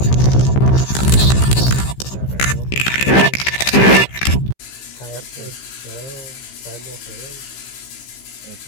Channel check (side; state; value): right; late; 15 ms